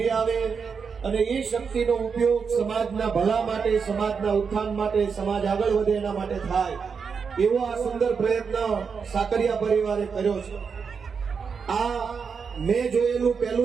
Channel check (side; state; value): left; quieter; 5.9 dB